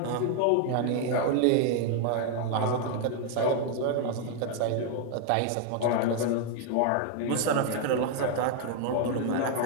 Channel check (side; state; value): both; different; correlation 0.00